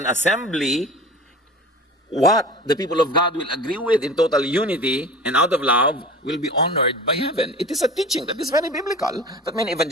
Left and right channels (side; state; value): both; normal; correlation 0.37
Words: assembly, what the people of God will agree with in total unity and out of love will be honored by heaven. It is a teaching that is very biblical that many